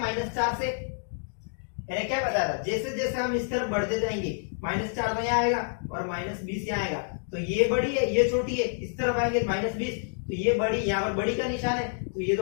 से? मैंने क्या बताया था, जैसे जैसे हम इस तरफ बढ़ते जाएंगे -4 तो यहाँ आएगा और -20 यहाँ आएगा, तो ये बड़ी है ये छोटी है। इस तरफ आएंगे -20 तो ये बड़ी, यहाँ पर बड़ी का निशान है, तो ये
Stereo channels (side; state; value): right; silent; digital silence